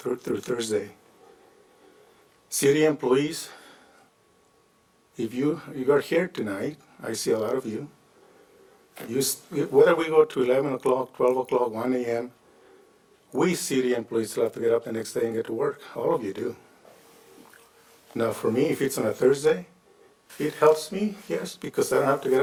Thursday. City employees, if you are here tonight, I see a lot of you. Whether we go to 11 o'clock, 12 o'clock, 1 a.m., we city employees still have to get up the next day and get to work. All of you do. Now for me, if it's on a Thursday, it helps me, yes, because I don't have to get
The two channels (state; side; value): identical; both; correlation 1.00